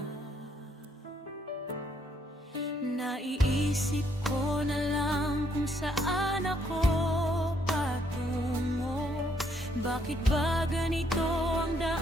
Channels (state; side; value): normal; both; correlation 0.71